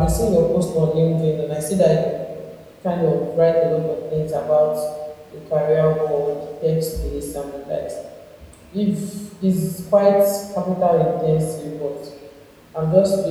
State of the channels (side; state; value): both; identical; correlation 1.00